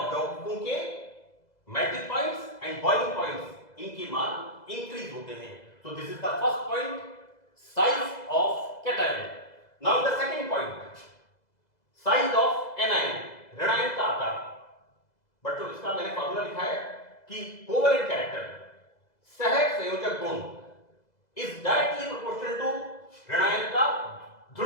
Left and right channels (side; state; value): right; late; 2.0 ms